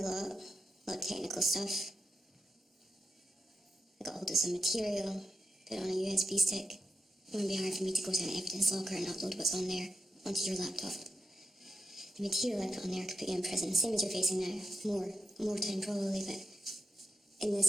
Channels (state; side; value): normal; both; correlation 0.90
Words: lot of technical stuff. I got hold of some material, put it on a USB stick. It wouldn't be hard for me to go to an evidence locker and upload what's on there onto your laptop. The material I put on there could put you in prison, same as you're facing now. More time probably, but in